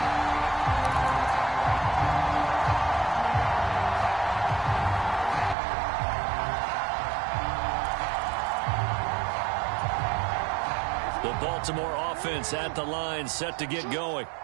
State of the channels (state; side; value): drops out; left; at 5.6 s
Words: The Baltimore offense at the line, set to get going.